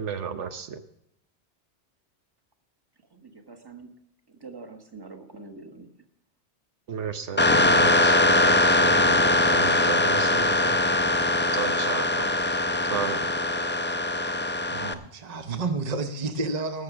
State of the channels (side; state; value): both; normal; correlation -0.12